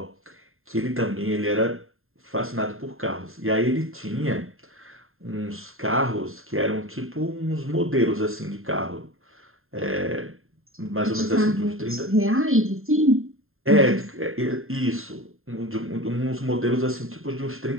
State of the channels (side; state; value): left; late; 0.61 ms